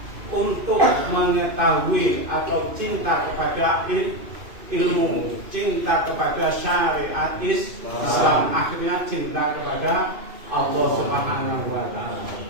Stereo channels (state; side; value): late; left; 2.6 ms